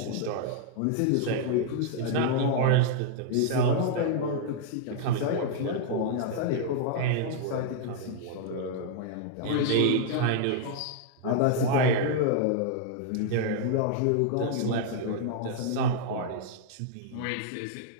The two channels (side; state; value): both; different; correlation 0.00